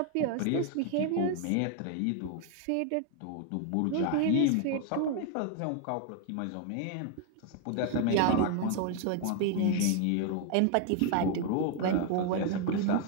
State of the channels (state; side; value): different; both; correlation 0.00